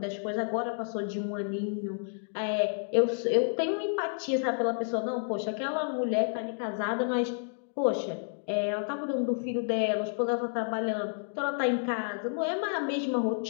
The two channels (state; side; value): silent; right; digital silence